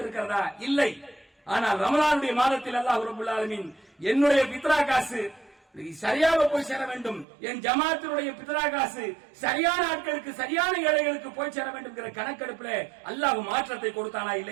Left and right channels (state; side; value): drops out; left; at 7.2 s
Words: இல்லை. ஆனால் ரமலானுடைய மாதத்தில் அல்லாஹ் ரப்பல் ஆலமீன் என்னுடைய பித்ரா காசு சரியாக போய் சேர வேண்டும், என் ஜமாத்தினுடைய பித்ரா காசு சரியான ஆட்களுக்கு, சரியான ஏழைகளுக்கு போய் சேர வேண்டும் என்கிற கணக்கெடுப்பில் அல்லாஹ் மாற்றத்தை கொடுத்தானா